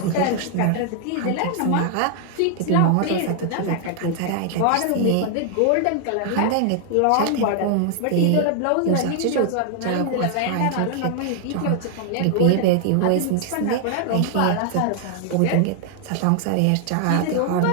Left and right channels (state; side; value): different; both; correlation 0.00